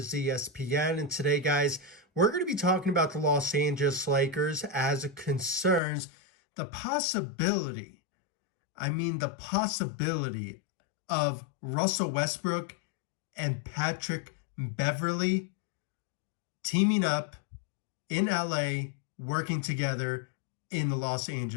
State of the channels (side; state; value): right; drops out; at 5.8 s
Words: And today, guys, we're going to be talking about the Los Angeles Lakers as it concerns the possibility, the possibility of Russell Westbrook and Patrick Beverley teaming up in LA, working together in the Los